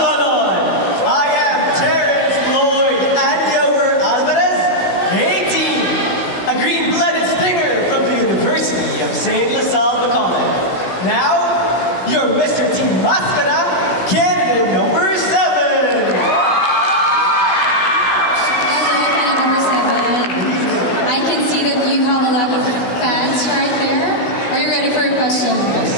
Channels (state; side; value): late; right; 16 ms